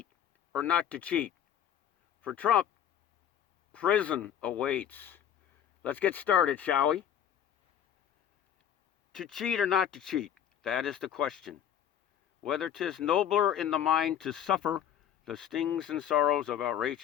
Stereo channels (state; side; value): quieter; right; 9.9 dB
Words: or Not to Cheat. For Trump, prison awaits. Let's get started, shall we? To cheat or not to cheat, that is the question. Whether 'tis nobler in the mind to suffer the stings and sorrows of